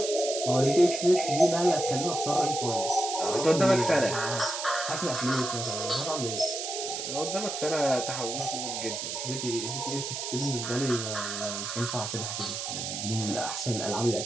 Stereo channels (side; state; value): right; noise; hiss, 4 dB below the sound